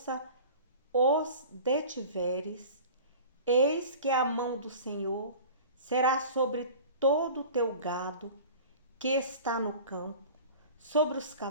os detiveres, eis que a mão do Senhor será sobre todo o teu gado que está no campo, sobre os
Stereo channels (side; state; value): both; inverted; correlation -0.39